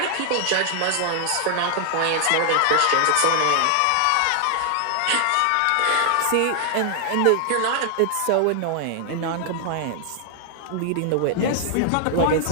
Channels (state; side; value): different; both; correlation 0.00